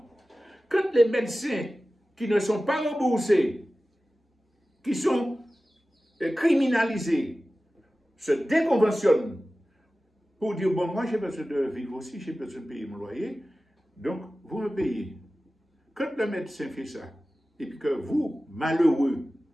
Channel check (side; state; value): both; normal; correlation 0.96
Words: Quand les médecins qui ne sont pas remboursés, qui sont criminalisés, se déconventionnent pour dire, bon, moi j'ai besoin de vivre aussi, j'ai besoin de payer mon loyer, donc vous me payez. Quand le médecin fait ça, et puis que vous, malheureux,